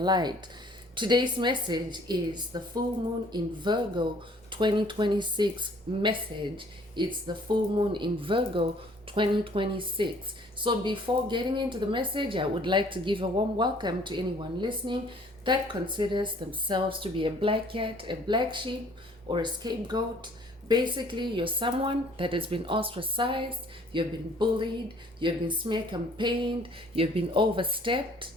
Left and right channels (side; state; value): both; normal; correlation 0.57